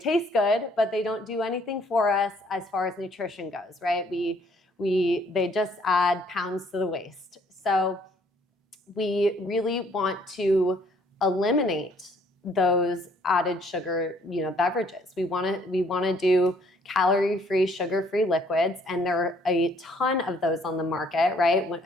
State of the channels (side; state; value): both; normal; correlation 0.63